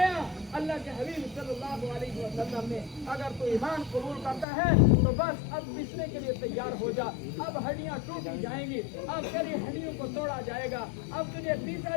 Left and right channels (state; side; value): drops out; right; at 4.5 s